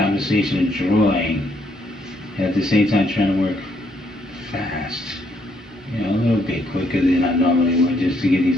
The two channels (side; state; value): both; normal; correlation 0.71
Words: and drawing, and at the same time trying to work fast. A little bit quicker than I normally would just to get